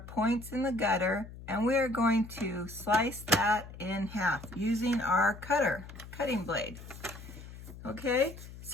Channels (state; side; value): noise; left; hum, 14 dB below the sound